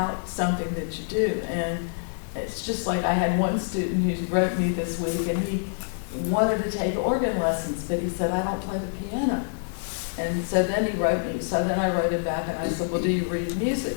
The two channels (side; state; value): right; silent; digital silence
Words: something that you do. And it's just like I had one student who wrote me this week, and he wanted to take organ lessons, but he said, I don't play the piano. And so then he wrote me, so then I wrote it back and I said, well, do you read music?